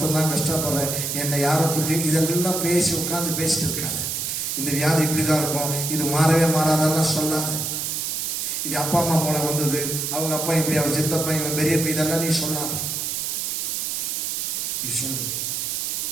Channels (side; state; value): right; noise; hiss, 2 dB below the sound